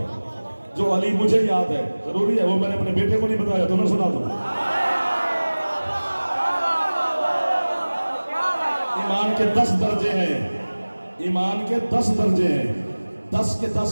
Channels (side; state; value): both; inverted; correlation -1.00